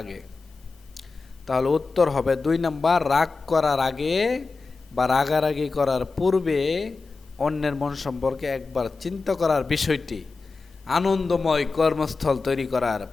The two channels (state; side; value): quieter; right; 4.1 dB